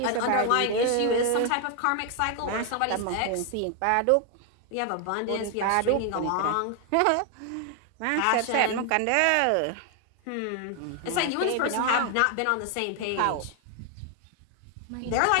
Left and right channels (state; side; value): different; both; correlation 0.00